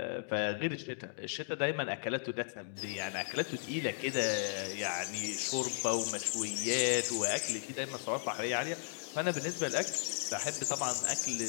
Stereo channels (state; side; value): silent; right; digital silence